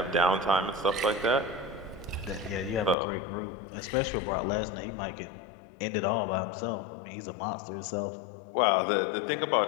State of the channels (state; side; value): drops out; right; at 3.0 s